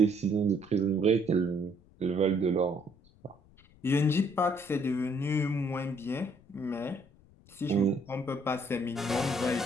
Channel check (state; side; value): noise; left; rumble, 27 dB below the sound